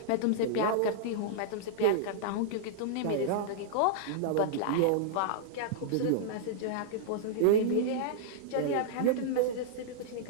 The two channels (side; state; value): both; different; correlation -0.02